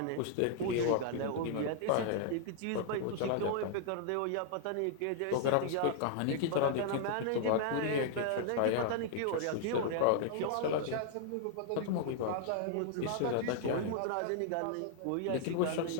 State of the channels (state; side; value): different; both; correlation -0.01